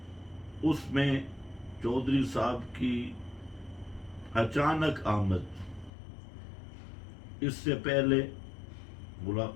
اس میں چودھری صاحب کی اچانک آمد، اس سے پہلے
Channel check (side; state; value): right; drops out; at 5.9 s